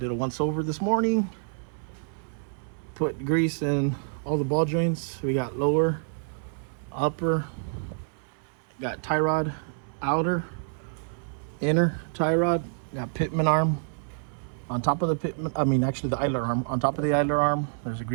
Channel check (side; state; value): left; silent; digital silence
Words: a once over this morning. Put grease in all the ball joints. We got lower, upper, got tie rod, outer, inner tie rod, got pitman arm on top of the pitman, actually the idler arm. On top of the idler arm, there's a